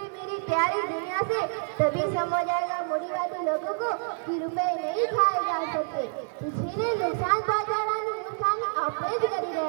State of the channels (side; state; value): left; silent; digital silence